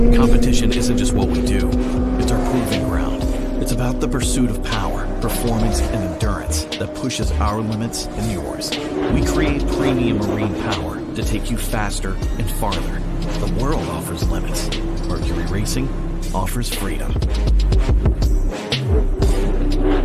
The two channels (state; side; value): identical; both; correlation 1.00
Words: Competition isn't just what we do, it's our proving ground. It's about the pursuit of power, performance, and endurance that pushes our limits and yours. We create premium marine power to take you faster and farther. The world offers limits. Mercury Racing offers freedom.